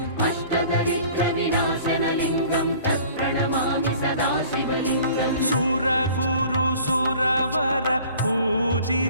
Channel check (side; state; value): both; inverted; correlation -0.49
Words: अष्टदरिद्रविनाशनलिङ्गं तत्प्रणमामि सदा शिवलिङ्गम् सुरगुरुसुरवर